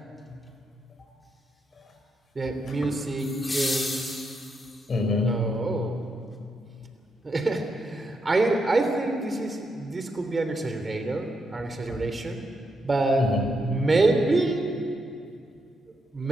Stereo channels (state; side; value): normal; both; correlation 0.81